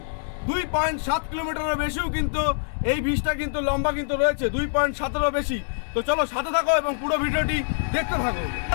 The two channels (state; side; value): silent; right; digital silence